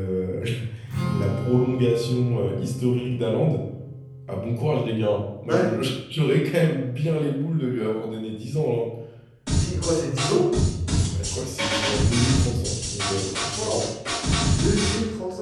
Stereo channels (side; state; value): both; identical; correlation 1.00